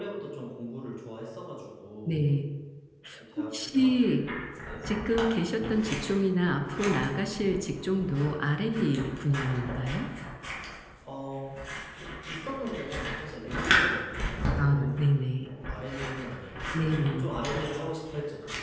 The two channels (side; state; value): both; identical; correlation 1.00